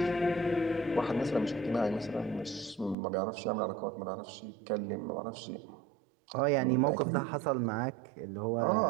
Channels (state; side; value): drops out; left; at 3.0 s